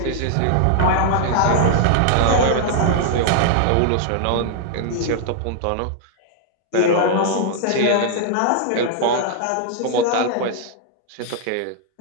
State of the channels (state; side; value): different; both; correlation -0.01